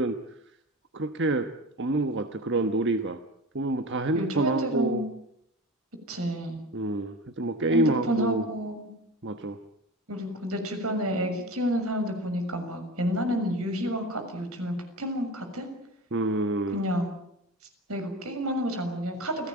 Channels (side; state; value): both; normal; correlation 0.32